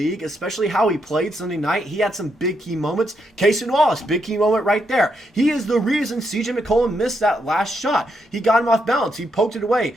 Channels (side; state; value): both; normal; correlation 0.79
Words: especially how he played Sunday night. He had some big key moments. Cason Wallace, big key moment right there. He is the reason CJ McCollum missed that last shot. He got him off balance. He poked it away,